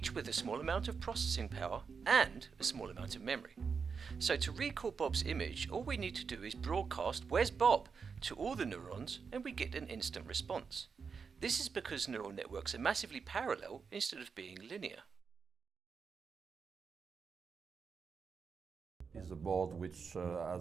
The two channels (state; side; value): quieter; left; 5.6 dB